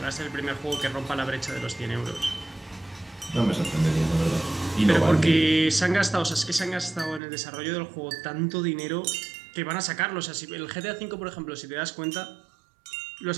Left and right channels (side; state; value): left; drops out; at 7.2 s